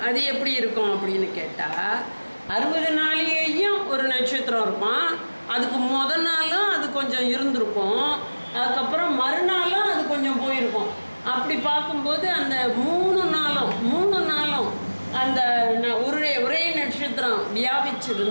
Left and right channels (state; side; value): inverted; both; correlation -1.00